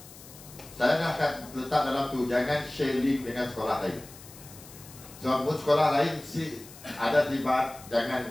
saya dah akan letak dalam tu, jangan share link dengan sekolah lain. Sebab sekolah lain ada terlibat, jangan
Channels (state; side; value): noise; left; hiss, 18 dB below the sound